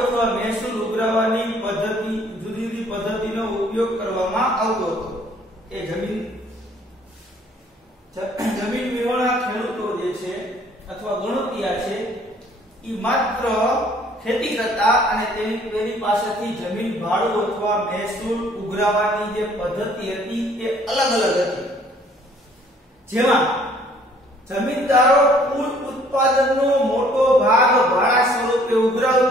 મહેસૂલ ઉઘરાવવાની પદ્ધતિ, જુદી જુદી પદ્ધતિનો ઉપયોગ કરવામાં આવતો હતો। એ જમીન વિહોણા ખેડૂતો જે છે અથવા ગણોતિયા છે એ માત્ર ખેતી કરતા અને તેની પાસેથી જમીન ભાડું અથવા મહેસૂલ ઉઘરાવવાની જે પદ્ધતિ હતી તે અલગ અલગ હતી। જેમાં જમીનદારો કુલ ઉત્પાદનનો મોટો ભાગ ભાડા સ્વરૂપે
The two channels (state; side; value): normal; both; correlation 0.59